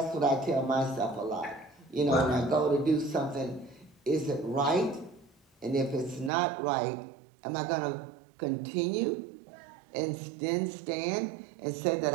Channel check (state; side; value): drops out; left; at 6.3 s